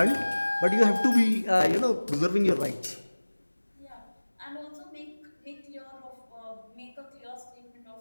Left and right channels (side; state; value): both; inverted; correlation -1.00